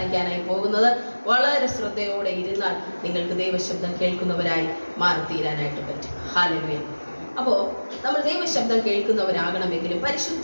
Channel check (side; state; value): both; inverted; correlation -1.00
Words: പോകുന്നത്. വളരെ ശ്രദ്ധയോടെ ഇരുന്നാൽ നിങ്ങൾക്ക് ദൈവശബ്ദം കേൾക്കുന്നവരായി മാറിത്തീരാനായിട്ട് പറ്റും. ഹല്ലേലൂയ. അപ്പോൾ നമ്മൾ ദൈവശബ്ദം കേൾക്കുന്നവരാകണമെങ്കിലും